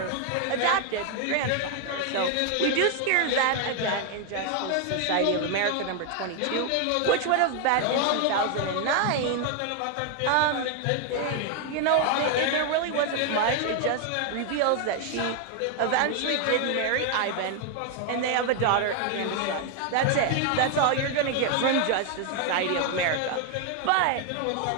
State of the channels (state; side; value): different; both; correlation 0.00